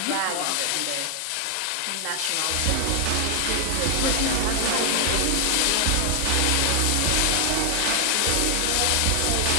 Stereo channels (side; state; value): both; different; correlation 0.00